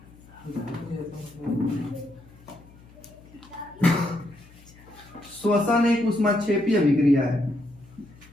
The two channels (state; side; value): noise; left; hum, 24 dB below the sound